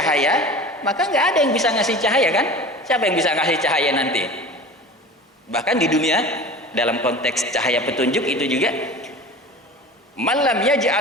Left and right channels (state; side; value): normal; both; correlation 0.36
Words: maka enggak ada yang bisa ngasih cahaya kan? Siapa yang bisa ngasih cahaya nanti? Bahkan di dunia dalam konteks cahaya petunjuk itu juga, man lam